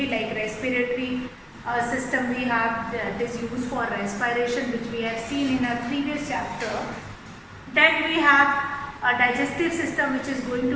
like respiratory system we have that is used for respiration, which we have seen in our previous chapter. Then we have a digestive system which is going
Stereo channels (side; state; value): both; identical; correlation 1.00